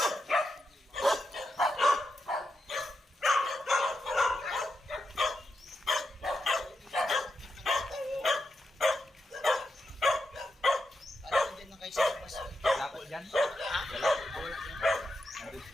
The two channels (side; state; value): both; normal; correlation 0.86